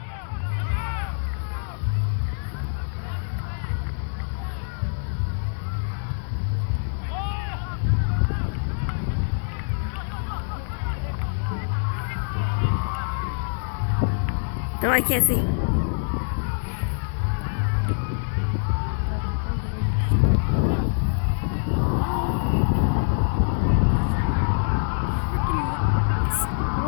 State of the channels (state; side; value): silent; right; digital silence